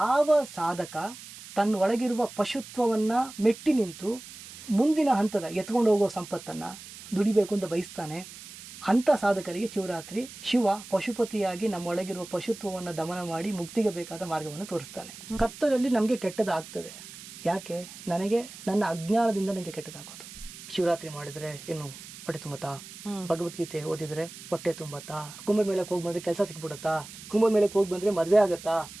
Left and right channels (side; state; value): right; noise; hiss, 15 dB below the sound